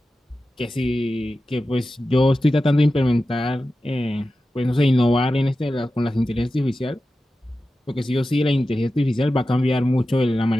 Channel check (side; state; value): both; normal; correlation 0.93